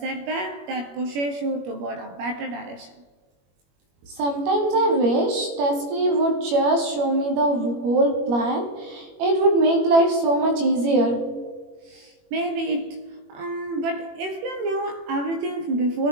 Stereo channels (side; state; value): left; late; 21 ms